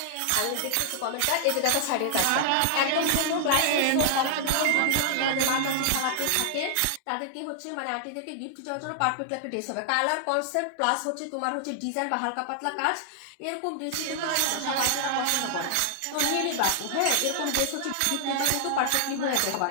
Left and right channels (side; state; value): both; different; correlation -0.01